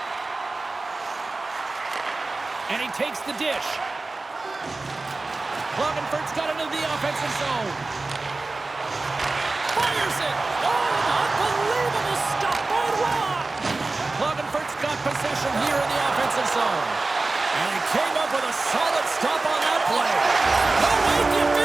And he takes the dish. Klagenfurt's got it into the offensive zone. Fires it! Oh, unbelievable stop by Rock! Klagenfurt's got possession here in the offensive zone. And he came up with a solid stop on that play. No, wait, the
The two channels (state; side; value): quieter; left; 3.4 dB